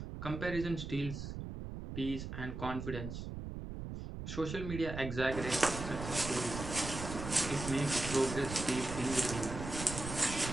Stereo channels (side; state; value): right; noise; rumble, 7 dB below the sound